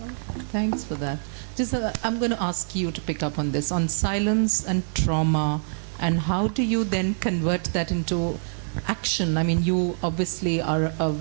Thanks for that. Just, I'm going to ask you to pick up on this, on silence and trauma, and how do you then convert that into action? I mean, you obviously are a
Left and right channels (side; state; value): left; silent; 62 dB below the other